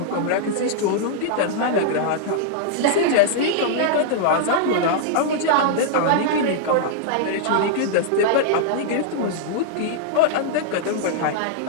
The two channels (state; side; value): different; both; correlation -0.01